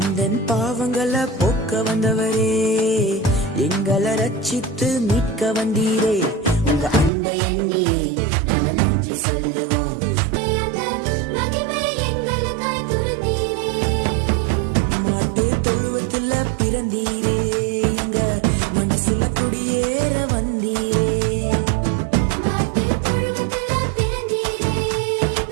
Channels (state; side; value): drops out; left; at 7.1 s